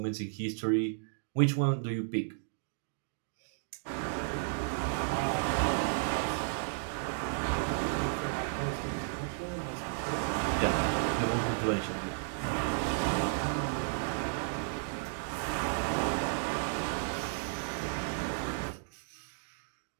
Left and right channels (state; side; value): silent; left; digital silence